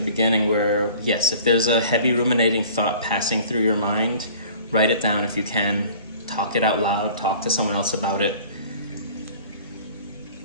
beginning, where yes, if there's a heavy ruminating thought passing through your mind, write it down if you can, talk it out loud, talk to someone else about it.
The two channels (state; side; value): inverted; both; correlation -0.47